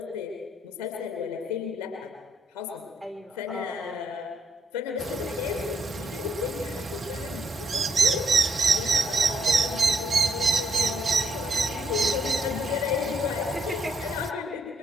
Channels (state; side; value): normal; both; correlation 0.73